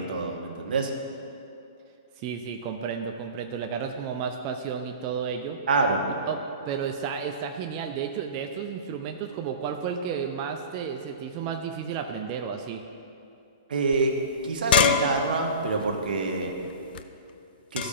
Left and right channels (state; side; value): inverted; both; correlation -0.34